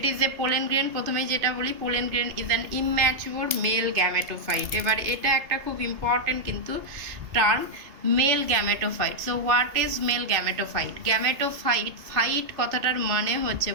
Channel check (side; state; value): left; late; 2.5 ms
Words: is a pollen grain. প্রথমেই যেটা বলি, pollen grain is an immature male gametophyte. এবার এটা একটা খুব ইম্পর্টেন্ট কিন্তু term, male gametophyte. So what is male gametophyte? Gametophyte, phyte কথাটার মানে হচ্ছে,